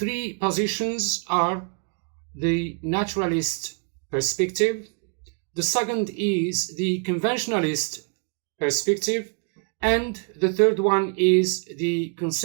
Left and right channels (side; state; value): left; quieter; 39.9 dB